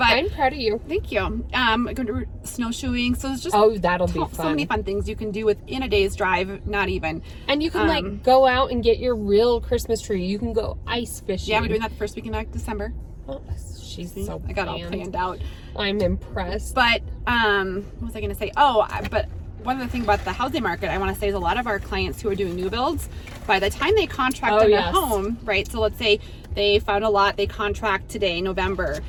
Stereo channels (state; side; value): identical; both; correlation 1.00